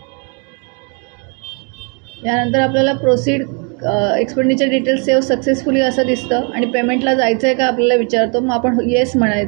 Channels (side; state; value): left; quieter; 36.5 dB